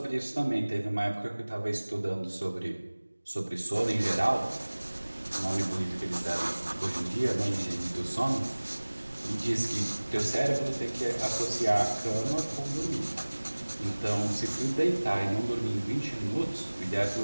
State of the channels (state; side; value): inverted; both; correlation -1.00